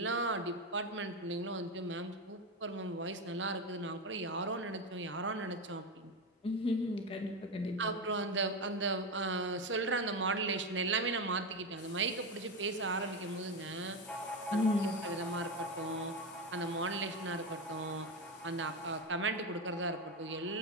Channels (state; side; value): normal; both; correlation 0.14